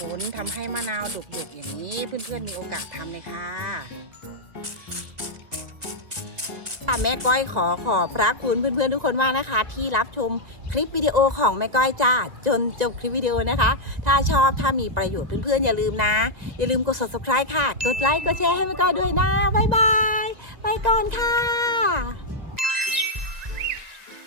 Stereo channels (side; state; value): left; late; 1.9 ms